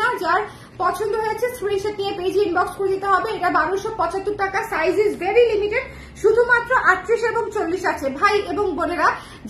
না। যার পছন্দ হয়েছে স্ক্রিনশট নিয়ে পেজে ইনবক্স করে দিতে হবে। এটা 1275 টাকা, সাইজ ইজ ভেরি লিমিটেড, শুধুমাত্র 38 এবং 40 আছে। ভাই এবং বোনেরা,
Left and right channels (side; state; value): both; identical; correlation 1.00